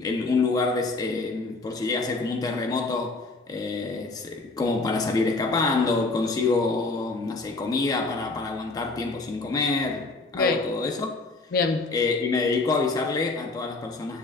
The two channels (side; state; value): right; quieter; 3.4 dB